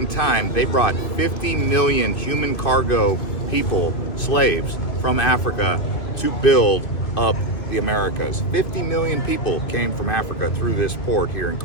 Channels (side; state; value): right; late; 2.5 ms